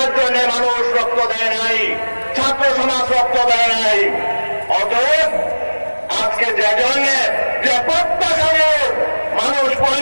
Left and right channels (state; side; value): inverted; both; correlation -1.00